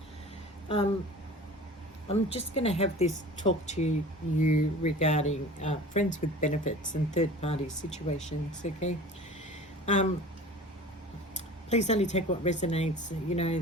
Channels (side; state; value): both; normal; correlation 0.40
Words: um, I'm just going to have this talk to you regarding friends with benefits and third-party situations. Okay, um, please only take what resonates. You know,